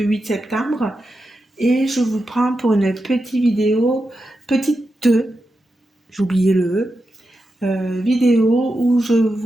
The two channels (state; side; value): normal; both; correlation 0.89